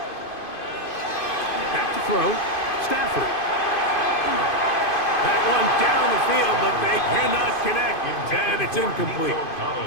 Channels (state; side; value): late; right; 2.5 ms